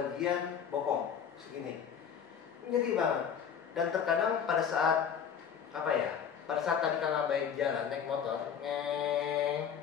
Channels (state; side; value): quieter; right; 7.7 dB